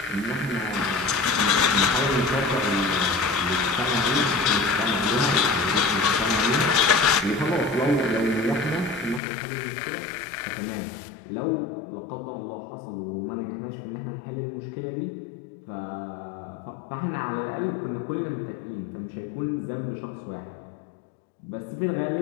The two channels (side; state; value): right; drops out; at 9.2 s